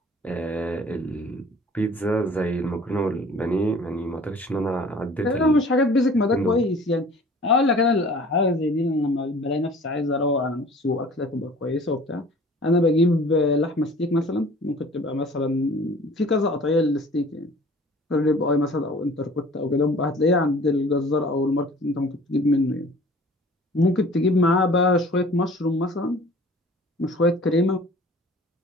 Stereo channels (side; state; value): both; normal; correlation 0.48